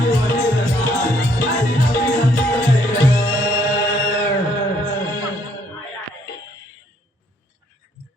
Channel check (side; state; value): both; normal; correlation 0.67